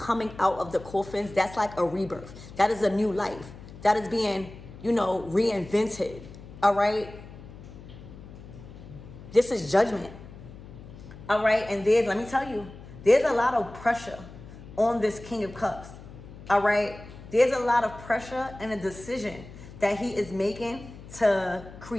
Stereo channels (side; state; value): left; noise; hum, 16 dB below the sound